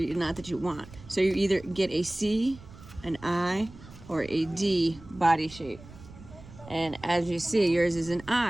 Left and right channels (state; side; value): noise; right; rumble, 19 dB below the sound